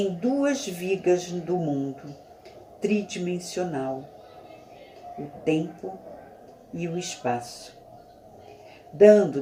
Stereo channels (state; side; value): identical; both; correlation 1.00